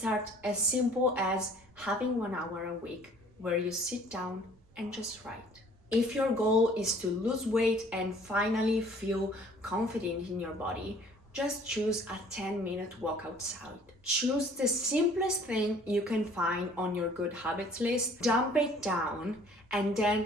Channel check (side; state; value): right; noise; rumble, 29 dB below the sound